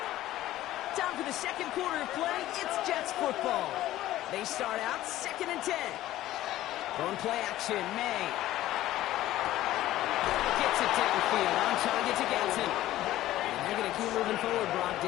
Time for the second quarter of play. It's Jets football. They start out second and 10. Going play action, May. Gets it downfield, on target to Gadsden. And they're going to keep moving forward, brought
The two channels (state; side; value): quieter; right; 14.7 dB